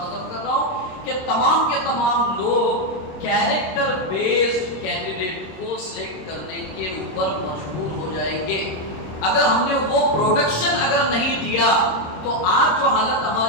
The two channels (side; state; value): right; late; 26 ms